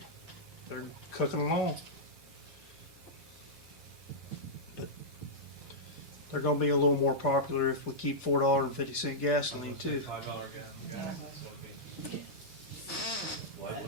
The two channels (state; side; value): normal; both; correlation -0.10